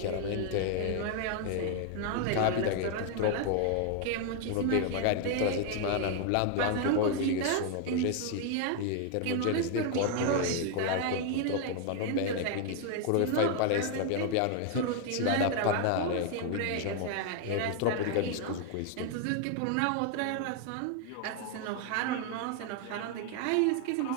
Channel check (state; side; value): different; both; correlation 0.00